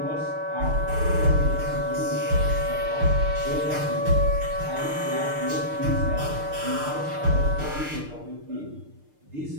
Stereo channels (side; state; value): left; late; 6.6 ms